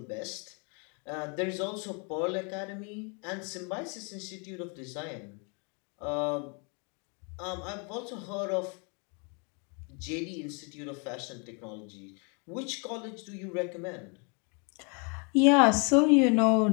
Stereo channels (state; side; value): quieter; right; 35.4 dB